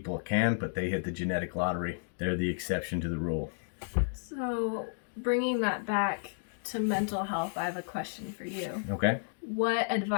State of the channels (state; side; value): silent; right; digital silence